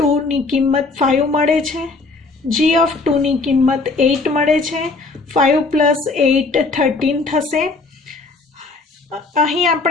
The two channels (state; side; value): quieter; right; 3.8 dB